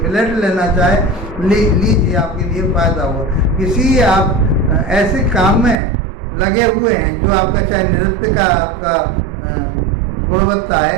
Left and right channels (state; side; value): drops out; left; at 5.8 s